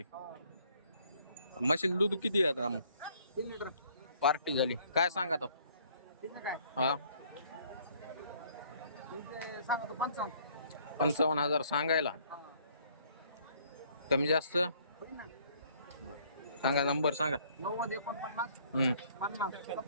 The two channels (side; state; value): both; inverted; correlation -0.61